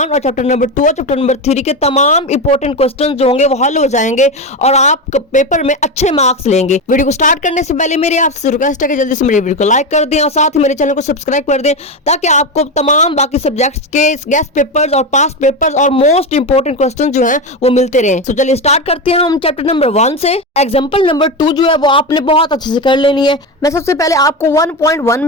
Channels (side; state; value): both; normal; correlation 0.16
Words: और चैप्टर नंबर 2 और चैप्टर नंबर 3 के तमाम इंपॉर्टेंट क्वेश्चन जो होंगे वो हल हो जाएंगे और आप पेपर में अच्छे मार्क्स लेंगे। वीडियो को स्टार्ट करने से पहले मेरी आपसे रिक्वेस्ट है कि जल्दी से मेरी वीडियो को लाइक कर दें और साथ ही मेरे चैनल को सब्सक्राइब कर दें ताकि आपको तमाम बाकी सब्जेक्ट्स के गेस्ट पेपर्स और पास्ट पेपर्स और मोस्ट इंपोर्टेंट क्वेश्चन जो हैं वो मिलते रहें। तो चलिए स्टार्ट करते हैं हम चैप्टर नंबर 1 से। एग्जांपल नंबर 2 जो है वो आपने बहुत अच्छे से कर लेनी है। मैं सबसे पहले आपको 1.1